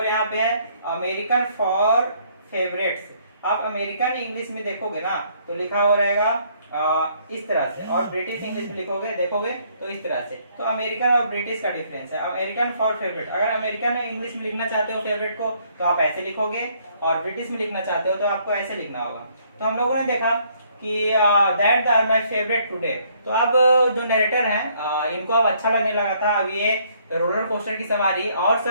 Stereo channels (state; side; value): inverted; both; correlation -0.66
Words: यहाँ पे है। अमेरिकन फॉर फेवरेट्स, आप अमेरिकन इंग्लिश में देखोगे ना तो लिखा हुआ रहेगा इस तरह से, और ब्रिटिश इंग्लिश में लिखोगे देखोगे तो इस तरह से। तो अमेरिकन और ब्रिटिश का डिफरेंस है। अमेरिकन फॉर फेवरेट, अगर अमेरिकन इंग्लिश में लिखना चाहते हो फेवरेट को तो आप ऐसे लिखोगे, और ब्रिटिश में लिखना चाहते हो तो आपको ऐसे लिखना होगा। तो हम लोगों ने देखा कि that are my favourite today. तो अब जो नरेटर हैं इनको अब अच्छा लगने लगा था, अब ये रोलर कोस्टर की सवारी और